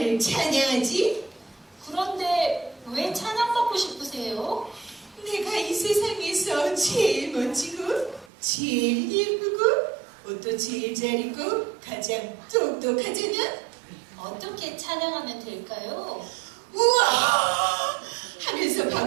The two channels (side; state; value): left; drops out; at 8.2 s